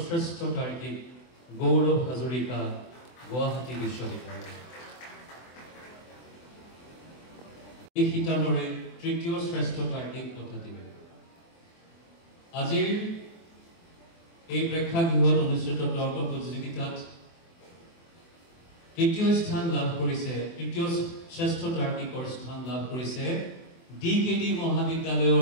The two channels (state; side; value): late; right; 24 ms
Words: শ্ৰেষ্ঠ তাৰ্কিক গৌৰৱ হাজৰিকা গুৱাহাটী বিশ্ববিদ্যালয় এই শিতানৰে তৃতীয় শ্ৰেষ্ঠ তাৰ্কিক বঁটাটি আজিৰ এই প্ৰেক্ষাগৃহত অনুষ্ঠিত তৰ্ক প্ৰতিযোগিতাত তৃতীয় স্থান লাভ কৰিছে তৃতীয় শ্ৰেষ্ঠ তাৰ্কিকৰ স্থান লাভ কৰিছে ডিকেডি